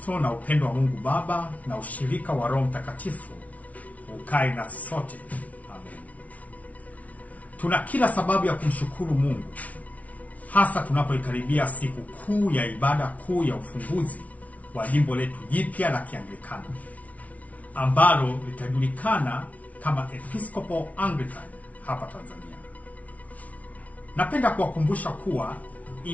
na upendo wa Mungu Baba na ushirika wa Roho Mtakatifu ukae nasi sote. Amen. Tuna kila sababu ya kumshukuru Mungu, hasa tunapoikaribia siku kuu ya ibada kuu ya ufunguzi wa jimbo letu jipya la Kianglikana, ambalo litajulikana kama Episcopal Anglican hapa Tanzania. Napenda kuwakumbusha kuwa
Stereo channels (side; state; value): right; late; 0.069 ms